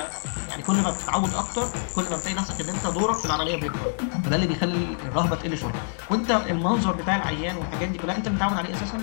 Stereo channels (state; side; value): silent; right; digital silence